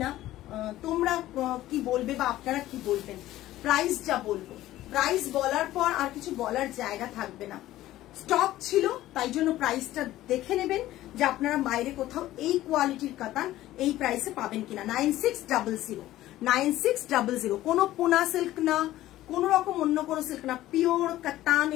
না তোমরা কি বলবে বা আপনারা কি বলবেন প্রাইস যা বলবো প্রাইস বলার পর আর কিছু বলার জায়গা থাকবে না স্টক ছিল তাই জন্য প্রাইসটা দেখে নেবেন যে আপনারা বাইরে কোথাও এই কোয়ালিটির কাতান এই প্রাইসে পাবেন কিনা 9600 কোনো পোনা সিল্ক না কোন রকম অন্য কোনো সিল্ক না পিওর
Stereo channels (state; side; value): quieter; right; 15.0 dB